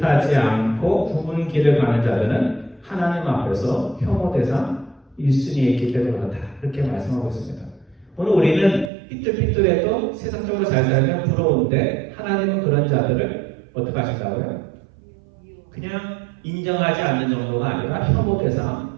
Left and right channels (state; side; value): drops out; left; at 8.9 s